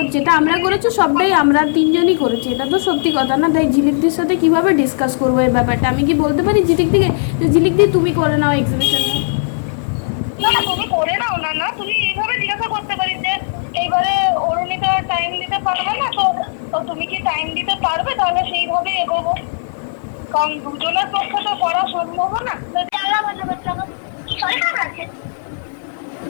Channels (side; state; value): right; silent; 61 dB below the other